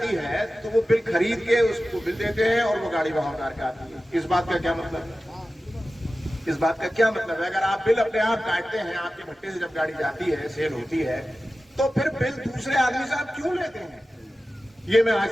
है तो वो बिल खरीद के उसको बिल देते हैं और वो गाड़ी वहां उतार के आती है। इस बात का क्या मतलब है? इस बात का क्या मतलब है? अगर आप बिल अपने आप काटते हैं, आपके भट्टे से जब गाड़ी जाती है, सेल होती है, तो फिर बिल दूसरे आदमी से आप क्यों लेते हैं? ये मैं आज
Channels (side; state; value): both; normal; correlation 0.95